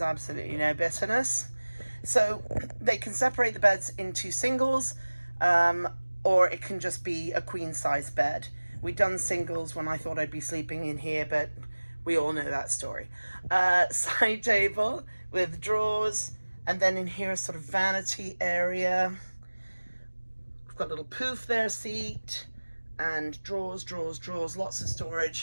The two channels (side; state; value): both; inverted; correlation -1.00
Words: absolutely no bitterness. So they can separate the beds into singles, or it can just be a queen size bed. We've done singles when I thought I'd be sleeping in here, but we all know that story. Side table with drawers, and then in here a sort of vanity area. We've got a little poof there, seat, and drawers, lots of